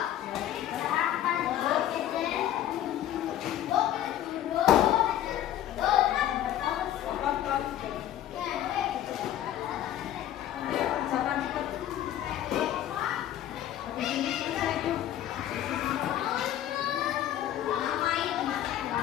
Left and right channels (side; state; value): right; quieter; 12.0 dB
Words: Ayo kerjakan cepat. Habis ini selesai tuh.